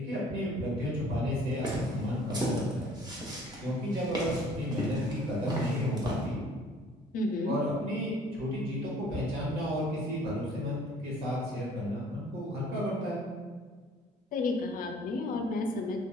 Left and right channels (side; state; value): both; normal; correlation 0.54